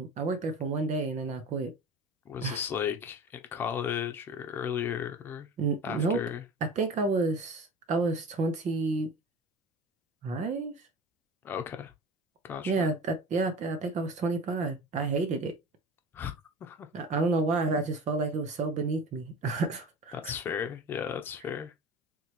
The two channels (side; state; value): both; normal; correlation 0.35